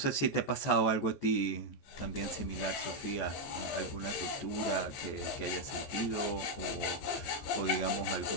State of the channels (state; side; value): late; right; 14 ms